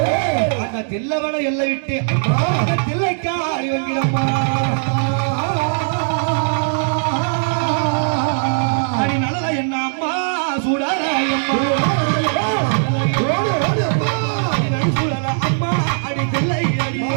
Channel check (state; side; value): silent; left; digital silence